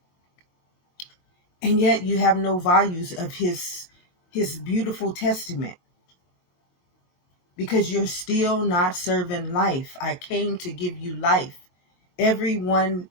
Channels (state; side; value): late; right; 22 ms